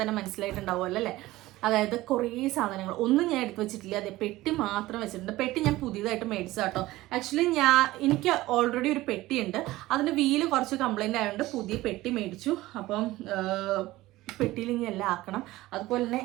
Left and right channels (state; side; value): quieter; left; 17.6 dB